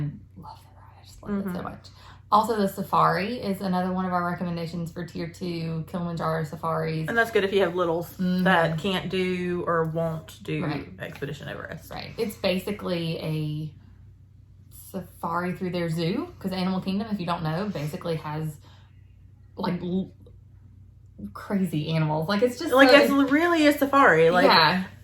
I just love it so much. Also, the safari is another one of our recommendations for tier 2, Kilimanjaro safaris. And that's good if you have littles that can't do or won't do Expedition Everest. Right. It's basically a safari through their zoo because Animal Kingdom, if you don't know, basically has like crazy animals. Like it's just like it's really a safari. Like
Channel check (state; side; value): identical; both; correlation 1.00